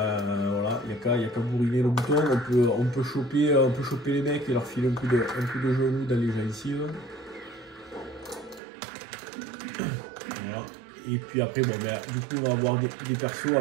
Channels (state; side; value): drops out; left; at 8.6 s